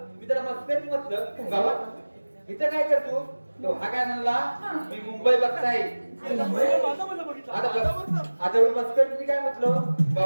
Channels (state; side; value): inverted; both; correlation -1.00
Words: मी त्याला मस्करी म्हटलं बाबा इथं काय करतो तो हा काय म्हणला मी मुंबई बघताय आता एवढी मस्करी मी काय म्हटलं